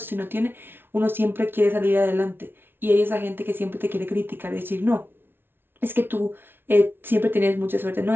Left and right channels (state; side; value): late; left; 0.11 ms